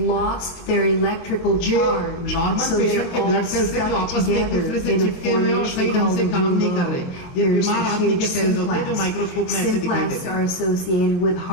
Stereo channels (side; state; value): right; late; 23 ms